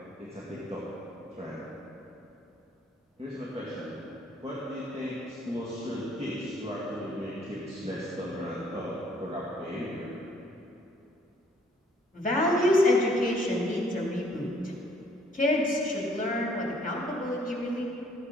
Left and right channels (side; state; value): both; normal; correlation 0.63